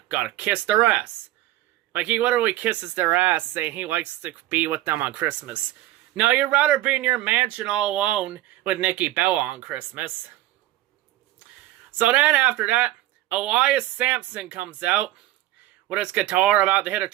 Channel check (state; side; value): quieter; left; 15.5 dB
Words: gotta kiss their ass. Like, he literally kisses their ass, saying he likes to be with them on Christmas. No, you'd rather be in your mansion all alone with Nikki Bella on Christmas. So then, after that, Elias Sampson comes out with his guitar about to hit a